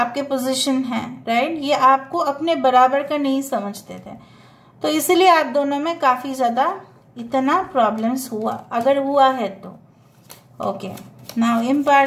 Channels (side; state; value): both; identical; correlation 1.00